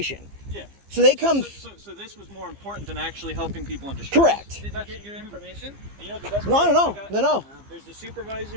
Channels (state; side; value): late; left; 15 ms